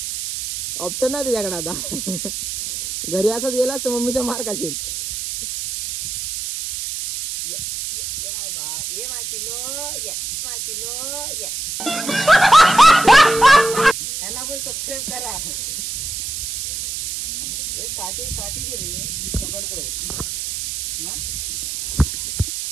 ऑप्शन नाही तुझ्याकडे आता. घरी असंच गेलास तर मम्मीचा मार खाशील. ह्याला पण सबस्क्राईब करा. काठी दे रे. पकडतो.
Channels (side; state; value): right; noise; hiss, 5 dB below the sound